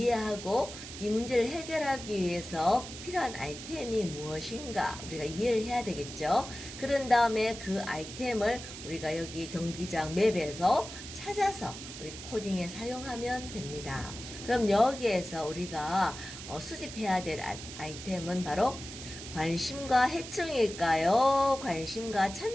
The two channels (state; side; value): noise; right; hiss, 11 dB below the sound